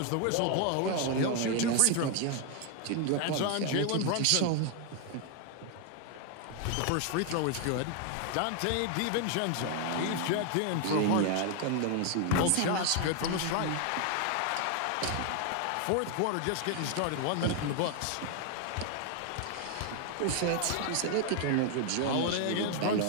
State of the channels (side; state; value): both; different; correlation 0.00